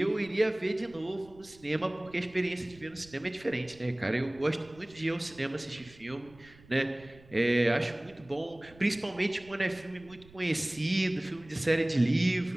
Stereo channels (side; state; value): right; noise; rumble, 24 dB below the sound